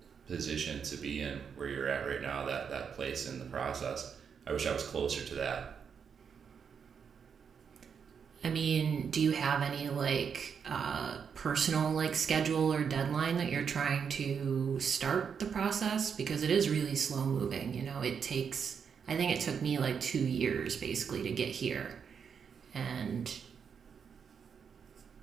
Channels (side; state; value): left; quieter; 6.8 dB